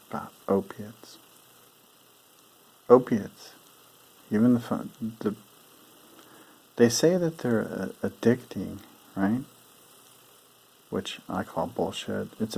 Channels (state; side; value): identical; both; correlation 1.00